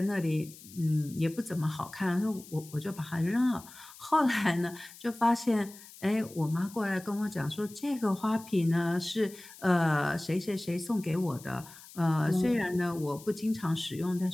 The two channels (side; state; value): left; noise; hiss, 19 dB below the sound